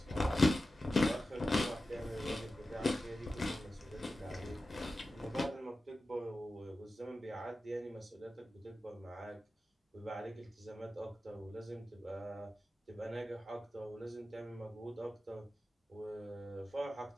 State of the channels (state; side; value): normal; both; correlation 0.93